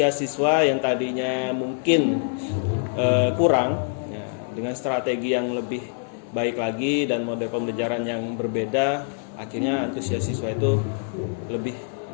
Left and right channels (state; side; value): silent; right; 62 dB below the other